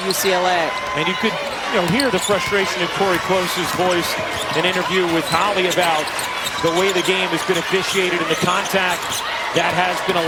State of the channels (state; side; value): noise; left; hum, 29 dB below the sound